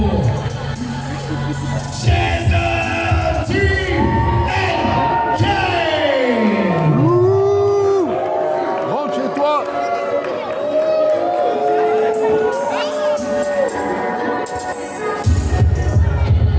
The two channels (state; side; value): identical; both; correlation 1.00